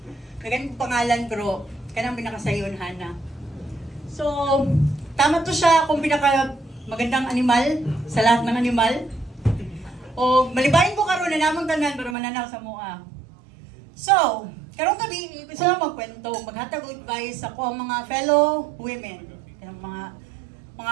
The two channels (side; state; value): left; drops out; at 12.2 s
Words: naganong pangalan, pero kanang pinakasayon, Hannah. So, tama to siya kung pinaka magandang animal sa lahat ng animal. O, malibayin ko karon na namang tanan para mananaw sa mua. So, karong gabi, gusto lang magkwento, maghatag advice ako ang mga fellow women. Yung